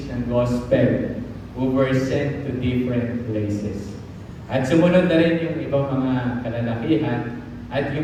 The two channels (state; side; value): identical; both; correlation 1.00